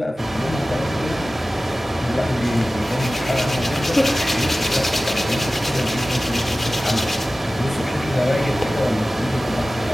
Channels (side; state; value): both; normal; correlation 0.96